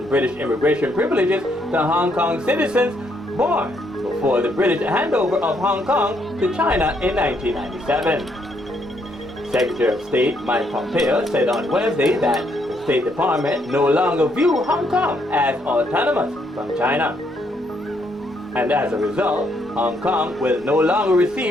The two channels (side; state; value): both; normal; correlation 0.73